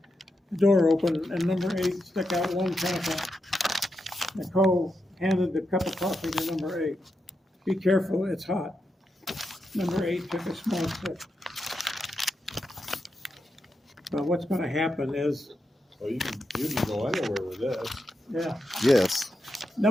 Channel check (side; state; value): both; normal; correlation 0.86